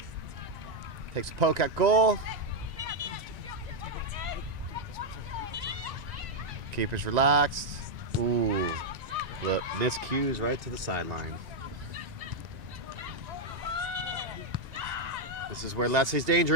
Takes a poke at goal. Keeper's relaxed. Ooh, look, miscues right to the sideline. This is where Leslie's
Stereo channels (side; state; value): left; late; 1.9 ms